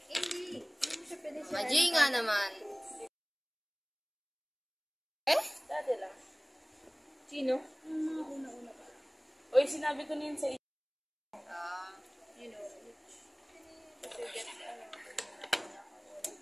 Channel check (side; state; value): both; identical; correlation 1.00